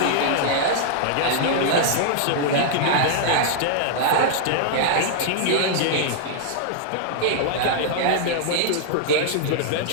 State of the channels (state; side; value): different; both; correlation -0.01